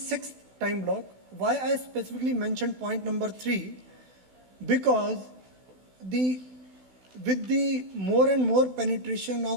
time block. Why I specifically mentioned point number 3? Because with the more and more penetration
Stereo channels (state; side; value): late; left; 16 ms